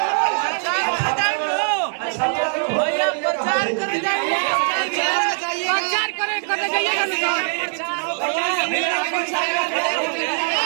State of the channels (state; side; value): silent; left; digital silence